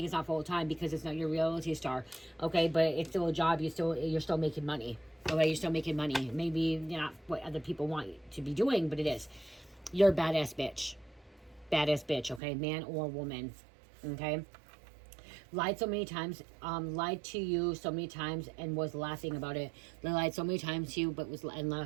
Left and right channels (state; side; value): drops out; left; at 12.4 s